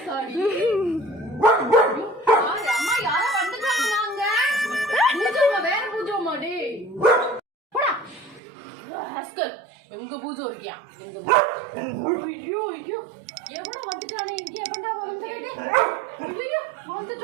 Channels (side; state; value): left; drops out; at 8.4 s